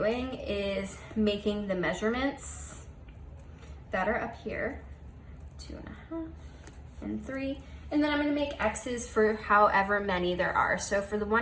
is making the measurements that are up here, 2.5 and 3. And then I'm gonna make X's for however many there are. So for the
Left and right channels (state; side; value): identical; both; correlation 1.00